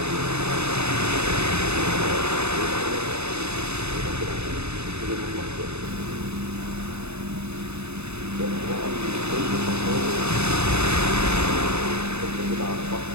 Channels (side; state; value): left; late; 0.80 ms